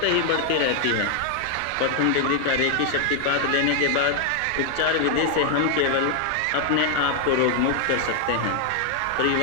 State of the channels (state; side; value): different; both; correlation 0.00